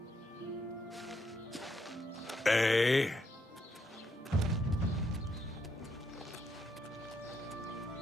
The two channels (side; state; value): both; normal; correlation 0.78